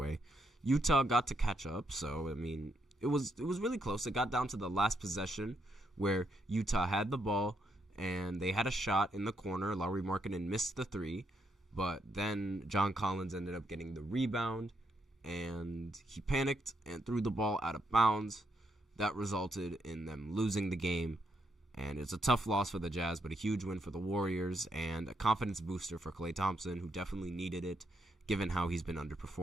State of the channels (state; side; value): normal; both; correlation 0.78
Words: Utah got to catch up, so I mean it was really close. It got down to the last possession where Utah had the ball and they had a shot in the corner. Lauri Markkanen missed the three, but then John Collins ended up getting the rebound, and he panicked and threw the ball out of bounds. That resulted in them losing the game, and it's a tough loss for the Jazz, but a huge win for the Warriors and a confidence booster for Klay Thompson, who definitely needed it, given how he's been